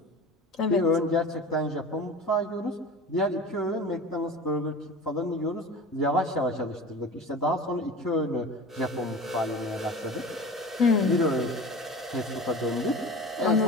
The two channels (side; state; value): both; normal; correlation 0.35